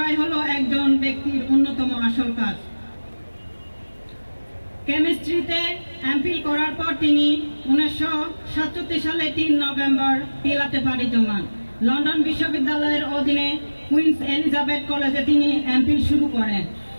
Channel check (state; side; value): inverted; both; correlation -1.00